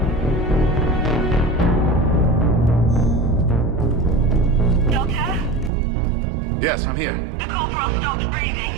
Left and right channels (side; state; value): left; drops out; at 5.7 s